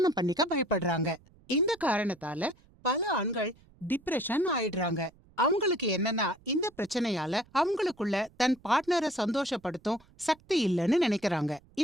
பண்ணிக்க பயப்படுறாங்க. இந்த காரணத்தால பல ஆண்கள் டிப்ரெஷன் ஆயிடுறாங்க. அவங்களுக்கு என்னன்னா இந்த பிரச்சனையால அவங்களுக்குள்ள தன் பார்ட்னரை சந்தோஷப்படுத்தும் சக்தி இல்லைன்னு நினைக்கிறாங்க.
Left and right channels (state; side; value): noise; right; rumble, 28 dB below the sound